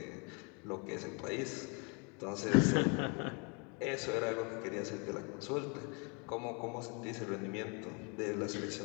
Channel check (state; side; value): quieter; right; 33.9 dB